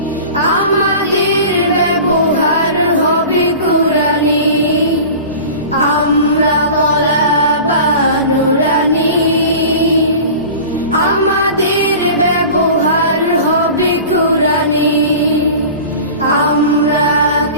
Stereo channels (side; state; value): both; inverted; correlation -0.38